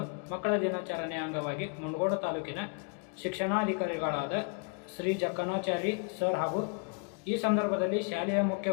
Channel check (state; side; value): quieter; right; 36.6 dB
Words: ಮಕ್ಕಳ ದಿನಾಚರಣೆಯ ಅಂಗವಾಗಿ ಮುಂಡಗೋಡು ತಾಲೂಕಿನ ಶಿಕ್ಷಣಾಧಿಕಾರಿಗಳಾದ ಶ್ರೀ ಜಕಣಾಚಾರಿ ಸರ್ ಹಾಗೂ ಈ ಸಂದರ್ಭದಲ್ಲಿ ಶಾಲೆಯ ಮುಖ್ಯ